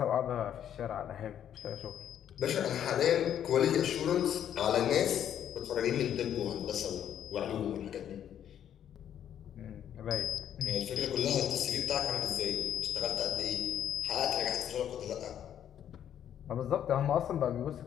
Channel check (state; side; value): quieter; right; 9.9 dB